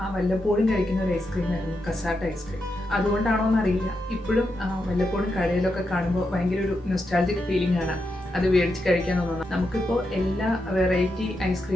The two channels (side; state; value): both; normal; correlation 0.85